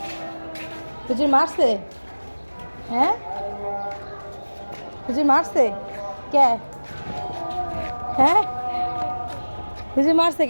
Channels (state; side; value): inverted; both; correlation -1.00